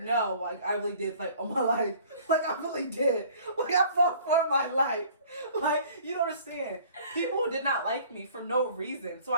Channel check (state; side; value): inverted; both; correlation -0.51